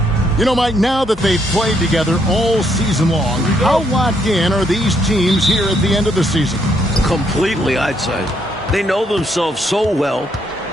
You know, Mike, now that they've played together all season long, how locked in are these teams here at the end of the season? Completely, I'd say. They know themselves so well.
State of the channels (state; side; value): normal; both; correlation 0.73